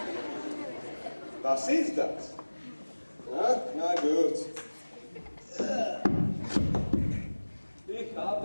Was ist das? Na gut. Ich habe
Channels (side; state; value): both; inverted; correlation -1.00